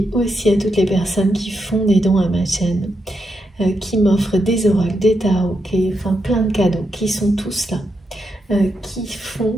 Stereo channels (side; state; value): both; normal; correlation 0.83